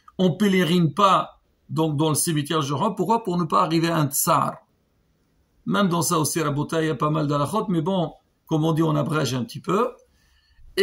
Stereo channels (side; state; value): both; identical; correlation 1.00